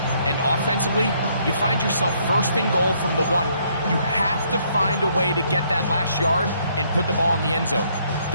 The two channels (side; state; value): both; inverted; correlation -0.68